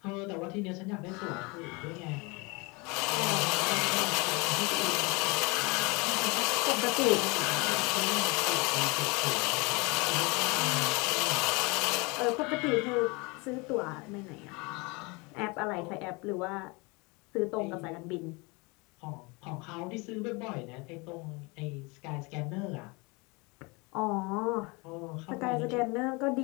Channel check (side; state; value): right; quieter; 27.5 dB